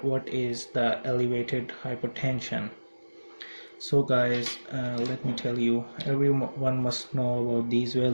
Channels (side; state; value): both; inverted; correlation -1.00